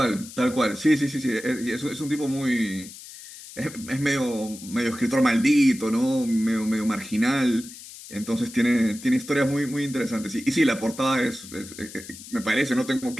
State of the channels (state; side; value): noise; left; hiss, 15 dB below the sound